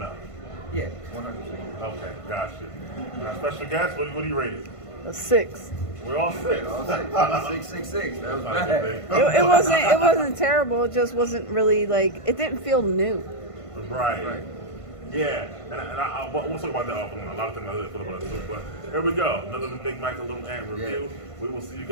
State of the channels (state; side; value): late; right; 1.5 ms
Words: Yeah, 100%. Okay, gotcha. Special guest, what do you rate it? A 6. We're all 6. All 6. That was bad. It wasn't terrible. It just wasn't really like it didn't feel new. Right. Yeah, and we'll talk about that offline. A lot of things I feel about it too. But here we go. Another Big Mike and Little Ant review. Yeah. We will see you